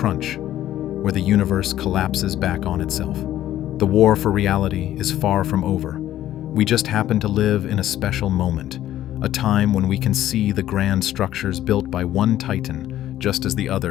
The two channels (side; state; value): right; quieter; 12.9 dB